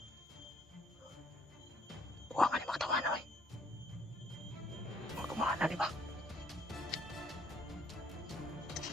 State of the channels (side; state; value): both; normal; correlation 0.64